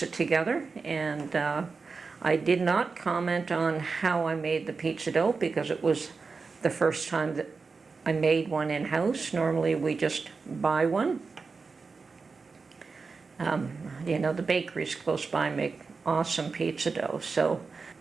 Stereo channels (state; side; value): quieter; left; 4.6 dB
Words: together, and I did not comment on how I made the pizza dough because it was the first time that I made one in-house. Normally we just buy one. You know, the bakeries close by make awesome pizza dough. So,